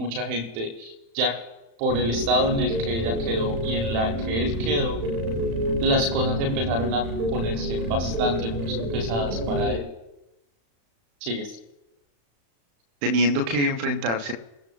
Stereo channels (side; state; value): left; late; 35 ms